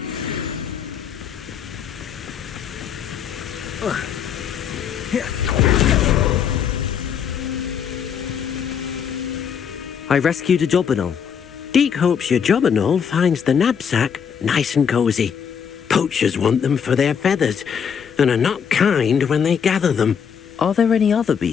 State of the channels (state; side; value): quieter; right; 7.5 dB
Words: I rescued a jobberknoll. Deke hopes your jobberknoll finds the knapsack nice and cosy. Poachers want them for their feathers, and are not kind when they gather them. Are there any other